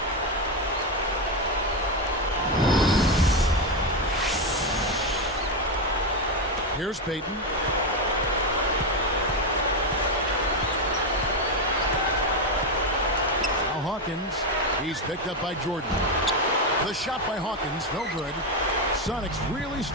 Here's Payton. Now Hawkins. He's picked up by Jordan. The shot by Hawkins, no good. Sonics really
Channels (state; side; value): normal; both; correlation 0.09